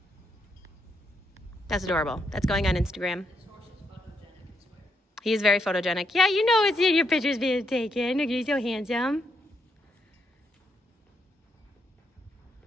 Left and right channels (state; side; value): normal; both; correlation 0.77